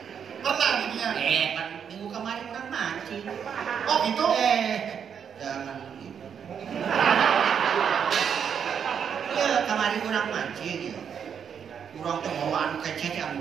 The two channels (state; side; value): quieter; left; 7.6 dB